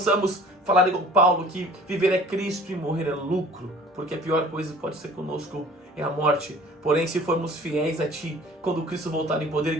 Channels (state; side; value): normal; both; correlation 0.48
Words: falar igual Paulo, que viver é Cristo e morrer é lucro, porque a pior coisa que pode ser conosco é a morte. Porém, se formos fiéis a Ti, quando Cristo voltar em poder e